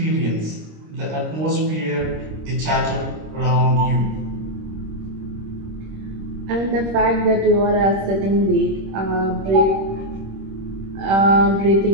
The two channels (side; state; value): left; late; 26 ms